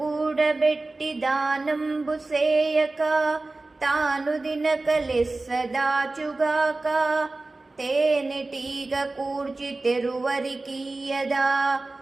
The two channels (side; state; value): left; quieter; 3.2 dB